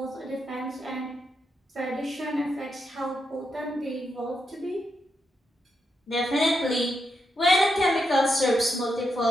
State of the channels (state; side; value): normal; both; correlation 0.83